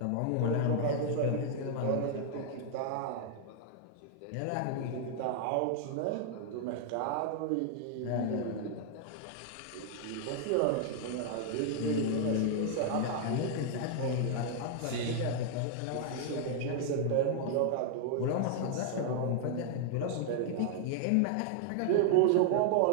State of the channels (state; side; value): different; both; correlation 0.00